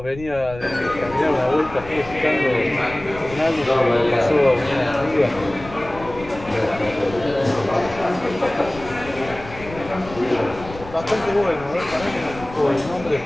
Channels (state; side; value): noise; left; rumble, 15 dB below the sound